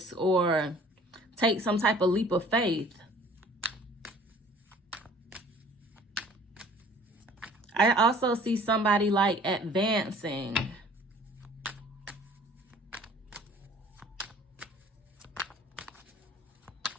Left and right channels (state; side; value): normal; both; correlation 0.51